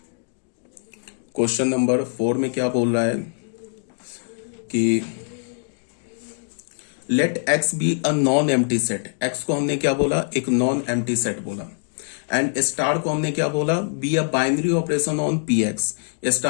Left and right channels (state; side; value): silent; right; 61 dB below the other